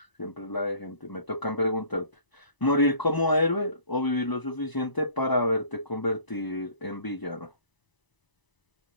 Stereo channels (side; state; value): right; late; 1.0 ms